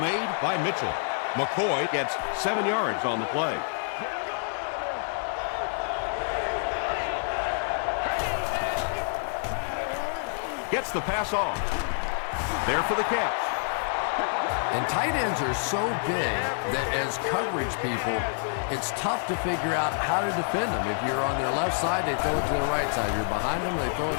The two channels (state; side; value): silent; right; digital silence